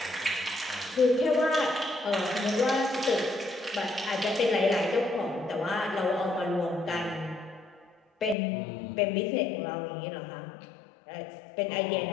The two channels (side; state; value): right; drops out; at 8.3 s